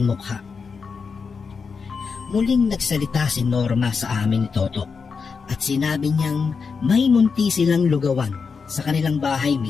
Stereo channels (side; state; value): right; quieter; 5.4 dB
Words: mukha. Muling nagsalita si Norma sa amin ni Toto at sinabi niyang may munti silang lugawan sa kanilang bahay